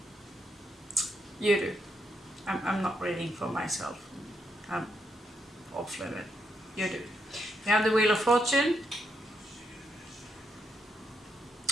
You do. I'm not reading for myself. I'm off limit. You do. You have the Wheel of Fortune.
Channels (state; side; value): normal; both; correlation 0.80